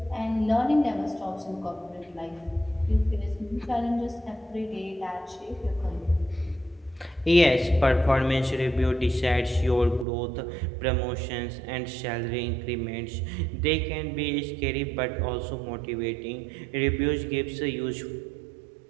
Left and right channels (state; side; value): drops out; left; at 10.1 s